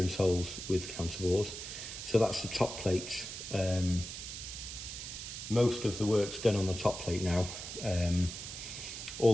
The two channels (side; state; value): right; noise; hiss, 8 dB below the sound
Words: holes with counterbores. So that's the top plate. Most of the work's done on the top plate now. All